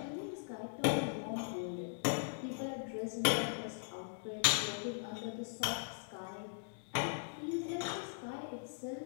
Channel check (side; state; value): right; silent; digital silence